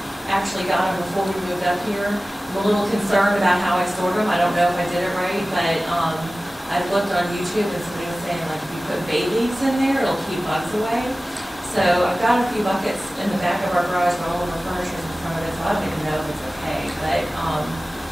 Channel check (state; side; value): normal; both; correlation 0.97